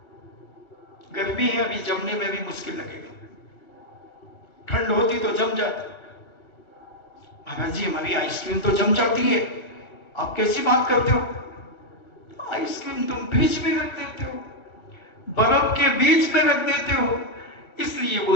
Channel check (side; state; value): right; late; 2.7 ms